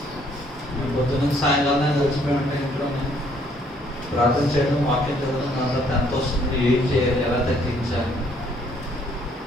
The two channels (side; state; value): both; normal; correlation 0.65